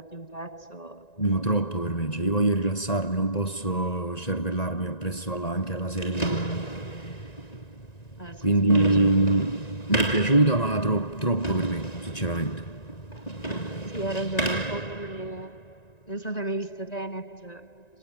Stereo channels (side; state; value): right; late; 1.9 ms